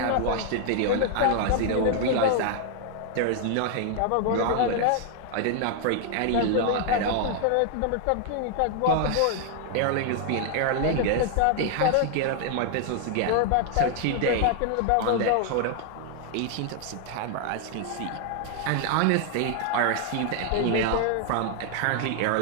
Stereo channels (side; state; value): both; different; correlation 0.00